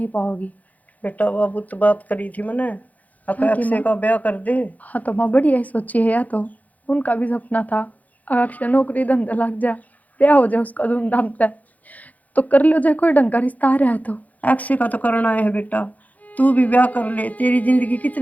पाओगी। बेटा बाबू तो बात करी थी मैंने, अक्षय का ब्याह कर दे। हाँ तो माँ बढ़िया ही सोची है, या तो उनका भी सपना था अक्षय नौकरी धंधा लग जा, ब्याह हो जाए उसका धूमधाम से, तो कर लो जाए, कोई ढंग का रिश्ता आ रहा है तो। अक्षय का तो करना है बेटा, तू भी ब्याह कर ले, तेरी जिंदगी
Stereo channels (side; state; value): right; late; 0.077 ms